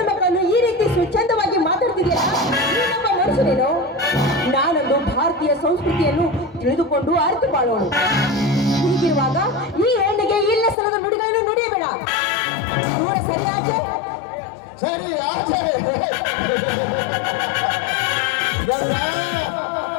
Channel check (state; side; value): drops out; right; at 10.8 s